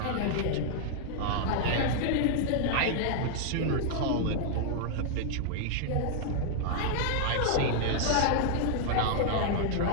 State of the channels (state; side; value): different; both; correlation -0.01